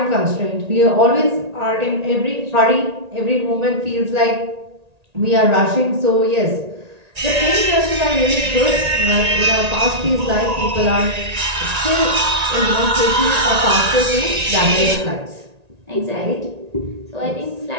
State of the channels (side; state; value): left; late; 1.8 ms